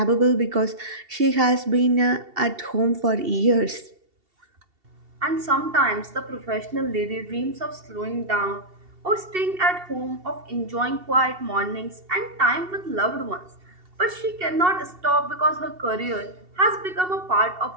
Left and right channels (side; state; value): left; late; 2.7 ms